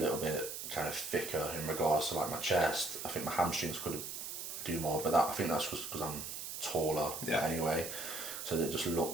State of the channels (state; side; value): noise; right; hiss, 6 dB below the sound